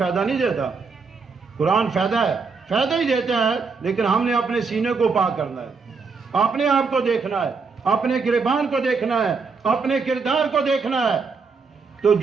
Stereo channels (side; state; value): left; quieter; 4.9 dB